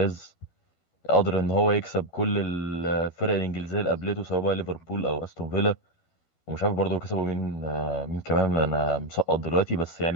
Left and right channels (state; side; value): late; right; 12 ms